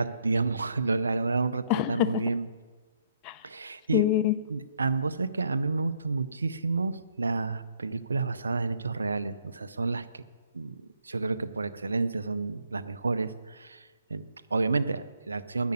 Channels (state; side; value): inverted; both; correlation -0.68